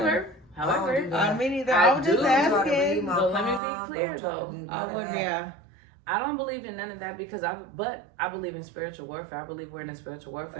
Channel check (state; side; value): drops out; left; at 3.6 s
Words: However, me neither. I was just asking. But let me be clear though. I don't believe in none of that because I believe in spiritual warfare. I believe we're in a spiritual